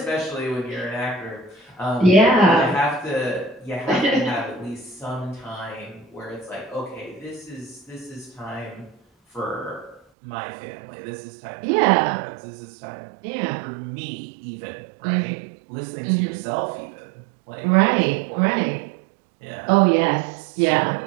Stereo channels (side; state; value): left; drops out; at 10.0 s